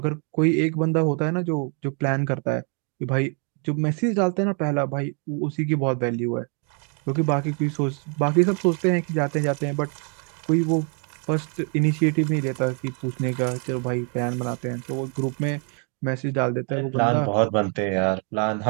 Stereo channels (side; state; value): left; quieter; 39.9 dB